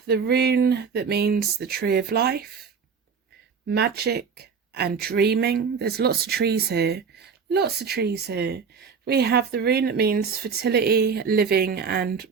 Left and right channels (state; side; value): quieter; left; 5.9 dB